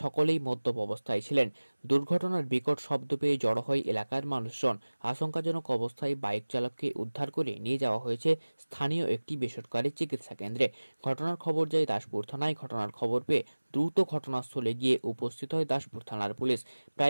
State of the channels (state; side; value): inverted; both; correlation -1.00